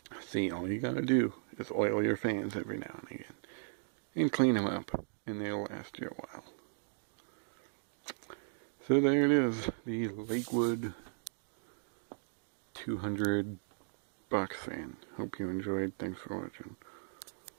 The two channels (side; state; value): left; silent; digital silence